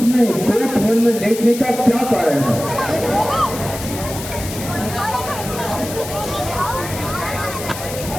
कोट धर्म लेखने का क्या कारण है?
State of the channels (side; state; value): left; noise; hiss, 10 dB below the sound